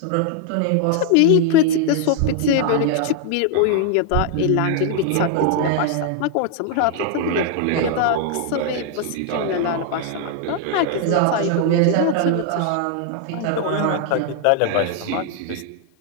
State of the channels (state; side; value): different; both; correlation 0.00